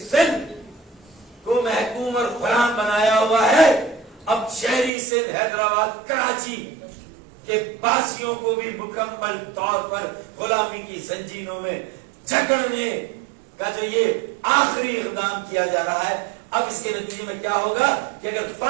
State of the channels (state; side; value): drops out; left; at 4.9 s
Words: کو محکوم اور غلام بنایا ہوا ہے، اب شہری سندھ، حیدرآباد، کراچی کہ باسیوں کو بھی مکمل طور پر غلامی کی زنجیروں میں جکڑنے کا جو یہ آخری اقدام کیا جا رہا ہے، اب اس کے نتیجے میں کیا ہوگا کہ اگر